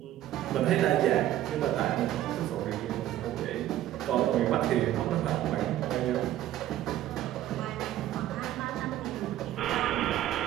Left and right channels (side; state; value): left; quieter; 13.1 dB